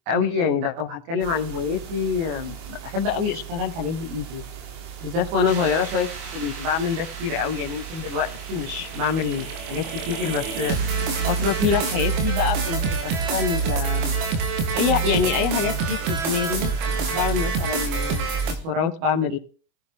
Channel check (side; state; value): left; late; 24 ms